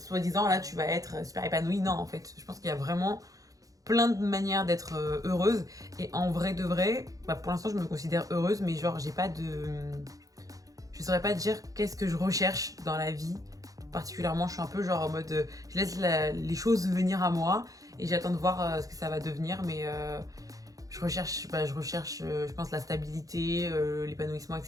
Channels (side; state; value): left; late; 0.17 ms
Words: là tu vas être super épanoui. Non, en fait, je pense qu'il y a vraiment plein de manières d'être heureuse et en vrai de vrai, bah, pour l'instant je me considère heureuse, mais genre j'ai pas de, je saurais pas dire qu'est-ce que je recherche dans la vie particulièrement. Je suis un peu genre en mode je laisse les choses venir à moi et j'attends de voir ce que ça va devenir, mais je recherche, je pense, la stabilité, l'épanouissement,